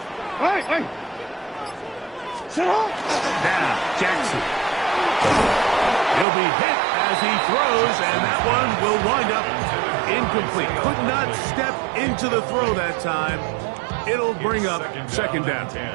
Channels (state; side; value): drops out; left; at 6.2 s